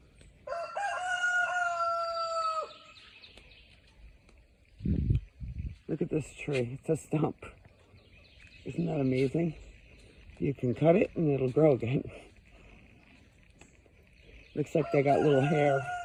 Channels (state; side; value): identical; both; correlation 1.00